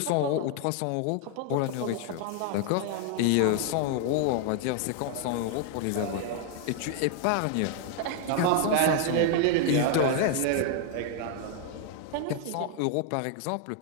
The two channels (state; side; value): different; both; correlation 0.00